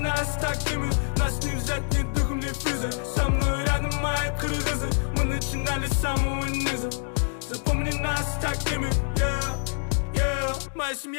такими, нас не взять ни духом, ни физой. Со мной рядом мои кыргызы, мы начинали с самого низа. Запомни нас такими, yeah. Моя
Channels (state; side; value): silent; right; 61 dB below the other